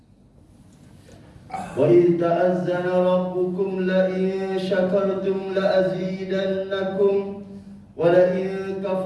wa idh ta'azzana rabbukum la in syakartum la azidannakum wa la in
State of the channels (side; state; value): both; identical; correlation 1.00